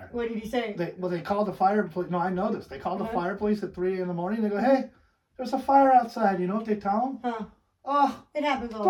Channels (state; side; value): identical; both; correlation 1.00